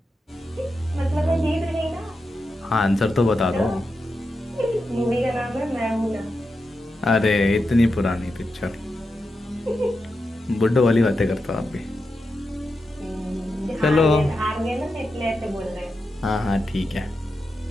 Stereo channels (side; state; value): both; normal; correlation 0.88